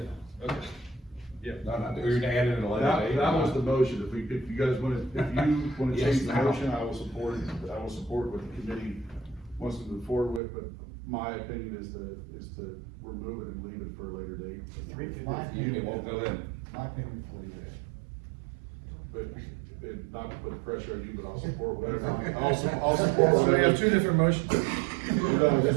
okay. Yeah. No, no, we're gonna add it in a later date. That was the motion, if you guys wanna, if you wanna Yes, change the now. motion, I will support it, what the committee wants to move forward with, but my opinion is to remove it and leave it for a later date. My opinion, It won't go in. my opinion is to leave it in. But, not to put pressure on you, but I'll support whatever, I'll support So we whatever. have two different motions. No, there's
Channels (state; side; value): drops out; left; at 10.4 s